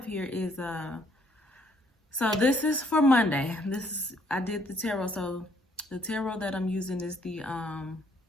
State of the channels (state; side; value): normal; both; correlation 0.67